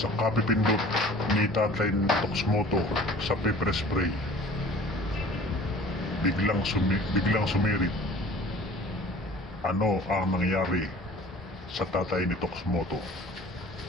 kapipindot ni Tatay Toxmoto sa paper spray, biglang sumirit. Ano ang nangyari sa tatay ni Toxmoto?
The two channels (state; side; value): normal; both; correlation 0.47